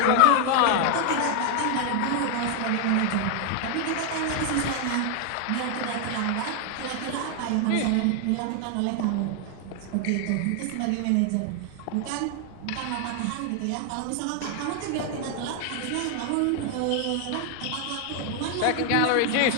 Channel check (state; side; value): different; both; correlation 0.00